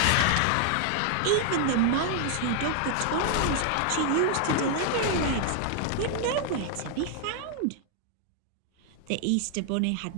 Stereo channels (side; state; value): both; different; correlation 0.00